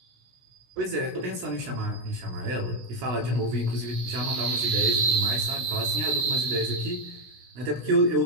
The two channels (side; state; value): left; late; 16 ms